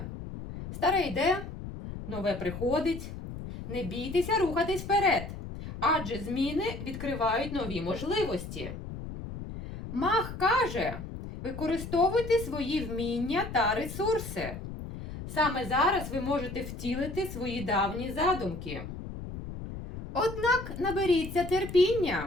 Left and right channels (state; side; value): noise; left; rumble, 9 dB below the sound